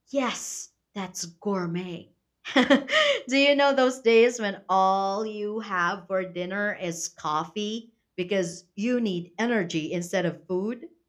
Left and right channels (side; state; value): both; identical; correlation 1.00